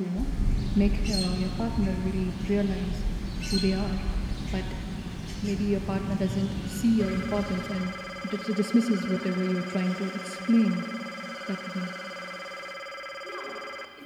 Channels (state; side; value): identical; both; correlation 1.00